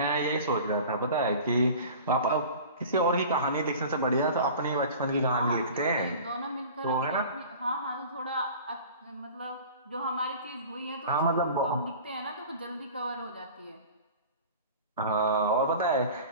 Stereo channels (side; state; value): both; inverted; correlation -0.40